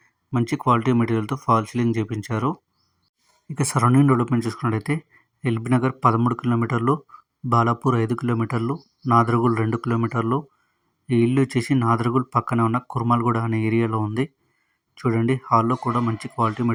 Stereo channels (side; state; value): both; identical; correlation 1.00